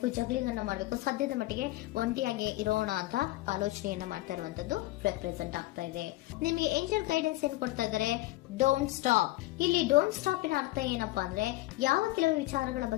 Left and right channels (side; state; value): right; quieter; 18.7 dB